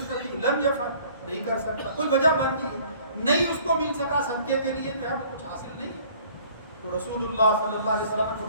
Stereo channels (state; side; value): inverted; both; correlation -0.55